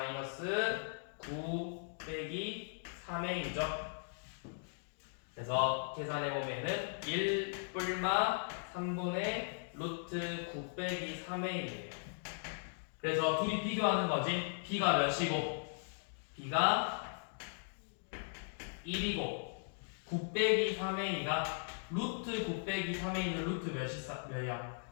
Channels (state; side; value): silent; right; digital silence